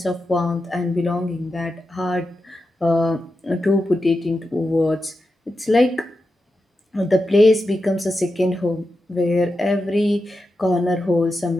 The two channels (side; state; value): both; normal; correlation 0.89